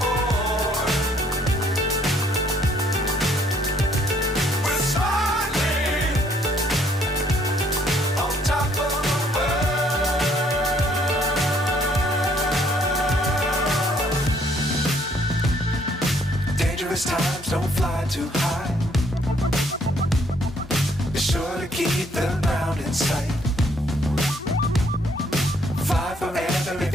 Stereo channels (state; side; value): normal; both; correlation 0.65